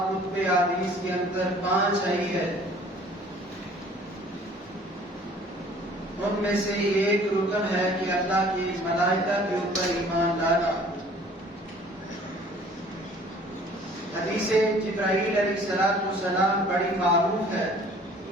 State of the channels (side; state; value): both; normal; correlation 0.52